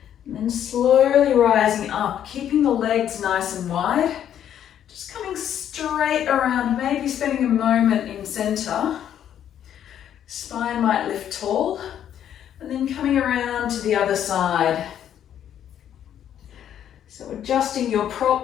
And then slowly rising up, keeping the legs nice and wide. Just coming straight around, maybe spending a moment in center. Spine might lift tall. And then coming around to the other side. So adjusting your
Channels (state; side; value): quieter; right; 10.0 dB